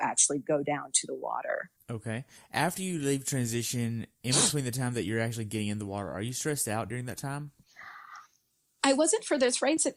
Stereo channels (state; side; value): identical; both; correlation 1.00